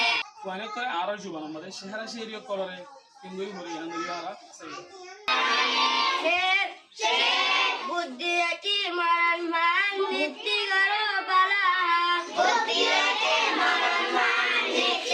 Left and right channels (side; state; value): both; identical; correlation 1.00